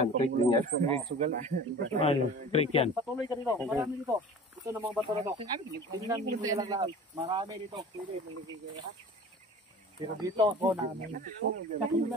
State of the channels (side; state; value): both; normal; correlation 0.40